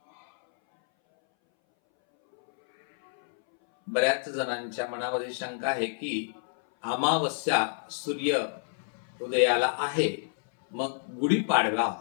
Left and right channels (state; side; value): silent; right; 59 dB below the other